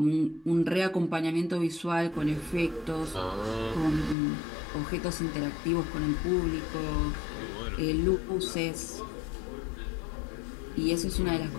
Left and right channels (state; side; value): drops out; right; at 4.2 s